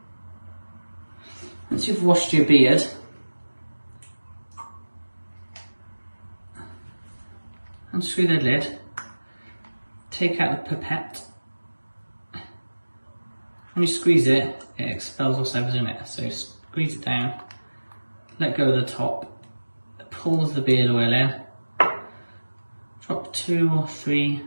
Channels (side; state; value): both; inverted; correlation -1.00